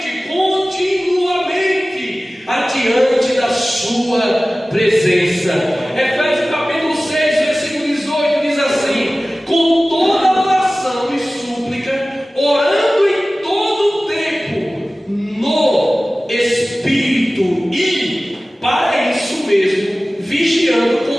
continuamente, adiante da sua presença. Efésios capítulo 6, versículo 18 diz assim: com toda oração e súplica, orando em todo o tempo no Espírito, e para isso mesmo vigiando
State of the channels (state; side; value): normal; both; correlation 0.97